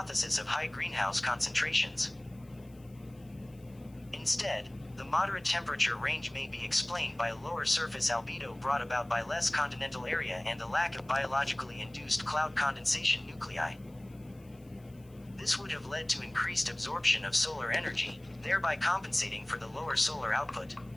of high greenhouse concentrations. Instead, the moderate temperature range may be explained by lower surface albedo brought about by less continental area and the lack of biologically induced cloud condensation nuclei. This would have led to increased absorption of solar energy, thereby compensating for the lower solar output.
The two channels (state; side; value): noise; left; hiss, 30 dB below the sound